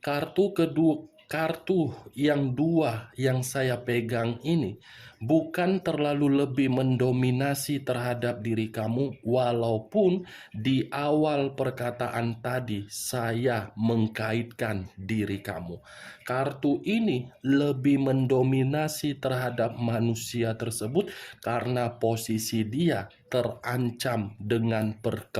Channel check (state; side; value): identical; both; correlation 1.00